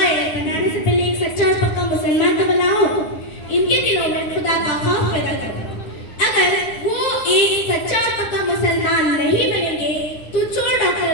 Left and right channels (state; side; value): late; right; 9.8 ms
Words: बनाने से पहले एक सच्चा और पक्का मुसलमान तो बनाओ। इनके दिलों में खुदा का खौफ पैदा करो। अगर वो एक सच्चा और पक्का मुसलमान नहीं बनेंगे तो चोर